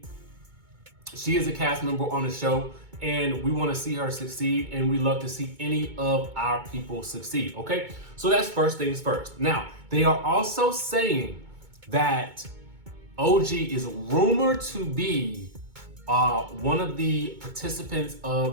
she is a cast member on the show and we want to see her succeed, and we love to see any of our people succeed, okay? So that's first things first. Now, they are also saying that OG is rumored to be one of the participants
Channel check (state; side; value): late; left; 2.2 ms